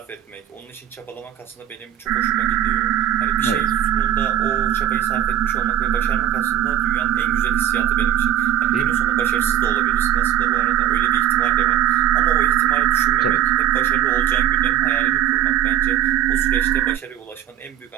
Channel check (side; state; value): left; quieter; 11.4 dB